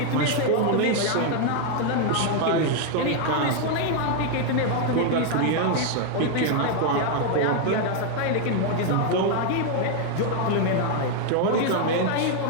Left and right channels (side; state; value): both; different; correlation 0.00